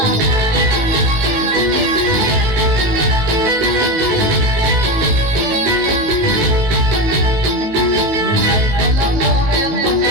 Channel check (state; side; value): late; left; 18 ms